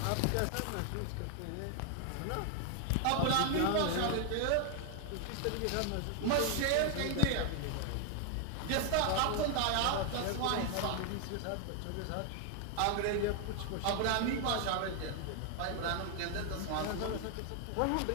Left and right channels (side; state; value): both; different; correlation 0.00